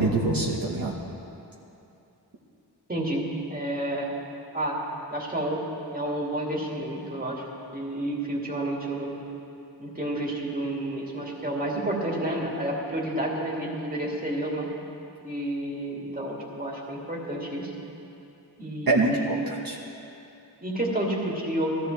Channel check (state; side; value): normal; both; correlation 0.28